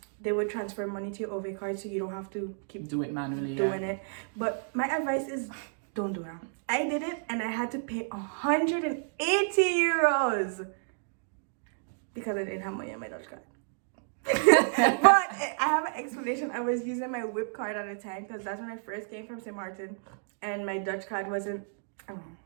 they would transfer money to your OV card, so you don't have to keep do it manually doing it. But my advice is don't do that. I did it and I had to pay 180 euros because I didn't have money on my Dutch card. But I have an explanation. I was using my whip card at the time because that's when I first came from St. Martin, and my Dutch card wasn't,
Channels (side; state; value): left; silent; digital silence